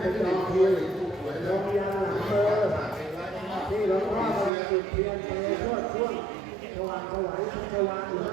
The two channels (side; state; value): left; drops out; at 4.5 s